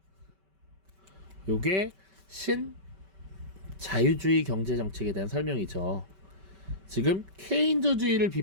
요게 신자유주의 경제정책에 대한 설명이죠. 지금 케인즈주의를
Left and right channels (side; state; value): left; late; 5.2 ms